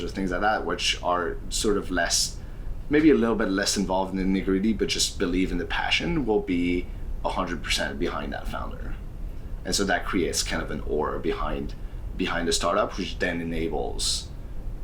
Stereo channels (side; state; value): both; identical; correlation 1.00